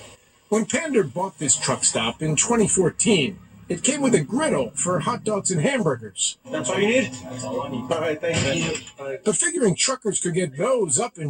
When Pander bought this truck stop in 2014, it came with a griddle for hot dogs and hamburgers. That's all you need? That's all I need. All right, thank you. But figuring truckers could get those up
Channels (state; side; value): identical; both; correlation 1.00